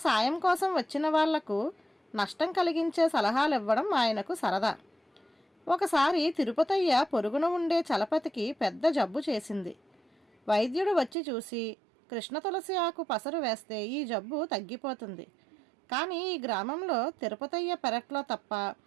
సాయం కోసం వచ్చిన వాళ్లకు నష్టం కలిగించే సలహాలు ఇవ్వడం ఆయనకు సరదా. ఒకసారి తిరుపతయ్య పొరుగున ఉండే చలపతికి పెద్ద జబ్బు చేసింది. వైద్యుడు వచ్చి చూసి కృష్ణ తులసి ఆకు పసరు వేస్తే ఈ జబ్బు తగ్గిపోతుంది, కానీ ఈ గ్రామంలో తిరుపతయ్య పెరట్లో తప్ప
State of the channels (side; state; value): left; drops out; at 11.2 s